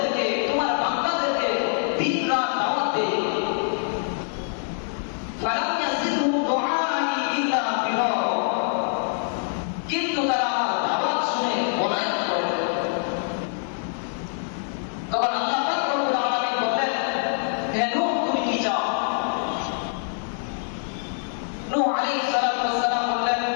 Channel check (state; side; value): silent; right; 62 dB below the other